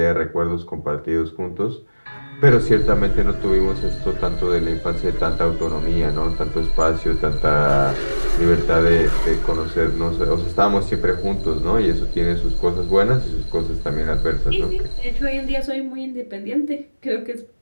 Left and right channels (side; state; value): both; inverted; correlation -1.00